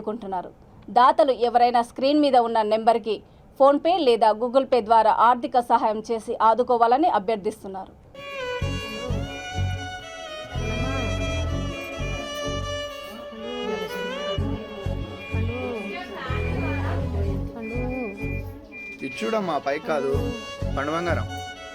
దాతలు ఎవరైనా స్క్రీన్ మీద ఉన్న నెంబర్కి ఫోన్పే లేదా గూగుల్ పే ద్వారా ఆర్థిక సహాయం చేసి ఆదుకోవాలని అభ్యర్థిస్తున్నారు. ఇచ్చుడమ్మా పై కాదు పండు బంగారం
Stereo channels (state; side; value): identical; both; correlation 1.00